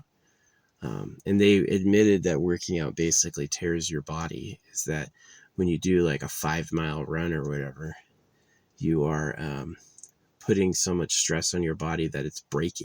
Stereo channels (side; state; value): both; identical; correlation 1.00